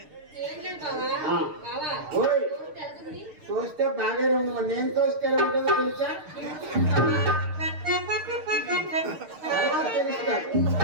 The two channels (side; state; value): left; late; 6.5 ms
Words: ఏం లేదు బావా. ఆ. బావా, ఓయ్, తోస్తే వెళ్తుంది. తోస్తే బాగానే ఉంది, నేను తోస్తే ఎలా ఉంటుందో తెలుసా? తర్వాత తెలుస్తుంది,